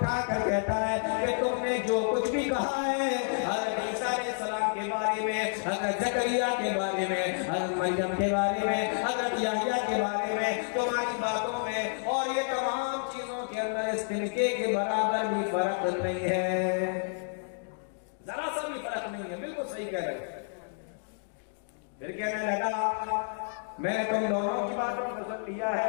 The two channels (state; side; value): silent; right; digital silence